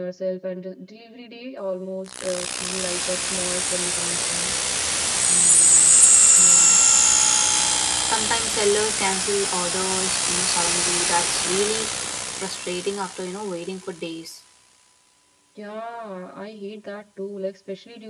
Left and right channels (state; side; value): identical; both; correlation 1.00